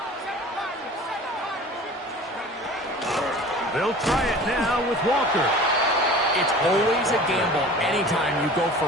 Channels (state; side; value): normal; both; correlation 0.41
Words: 7 They'll try it now with Walker. It's always a gamble anytime you go for